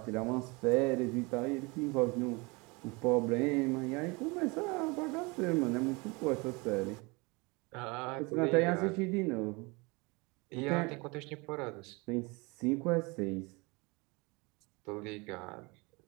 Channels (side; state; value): left; quieter; 27.1 dB